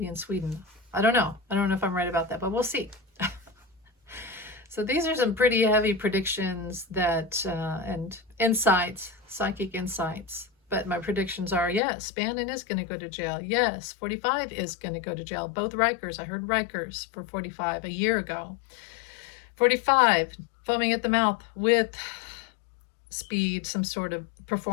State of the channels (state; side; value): drops out; right; at 11.8 s